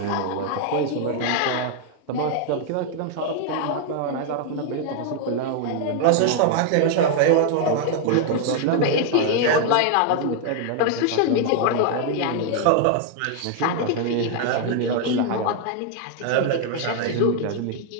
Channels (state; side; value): different; both; correlation 0.00